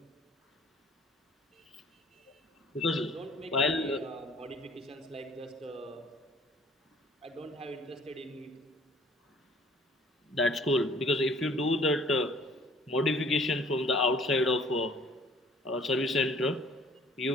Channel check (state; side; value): normal; both; correlation 0.54